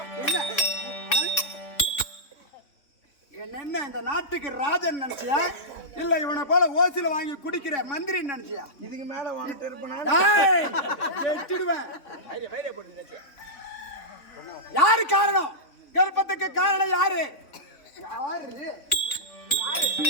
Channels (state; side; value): late; right; 3.6 ms